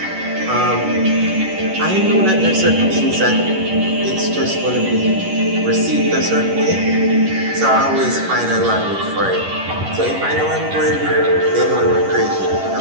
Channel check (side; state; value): left; late; 10 ms